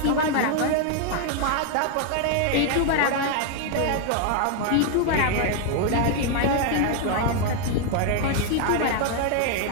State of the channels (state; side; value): different; both; correlation 0.01